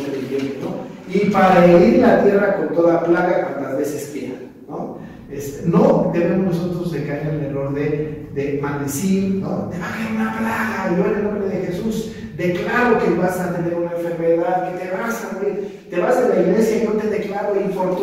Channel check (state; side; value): identical; both; correlation 1.00